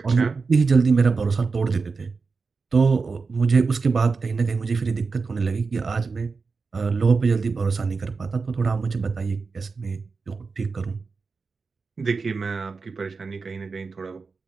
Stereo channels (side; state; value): left; quieter; 4.6 dB